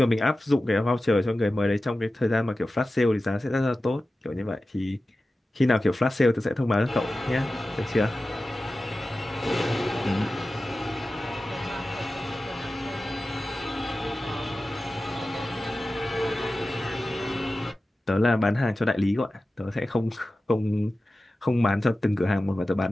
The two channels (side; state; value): both; normal; correlation 0.95